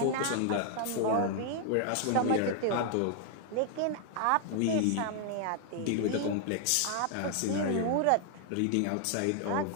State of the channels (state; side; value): different; both; correlation 0.00